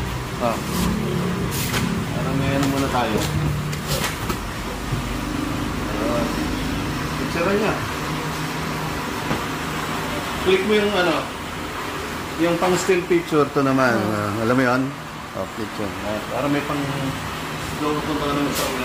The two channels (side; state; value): both; identical; correlation 1.00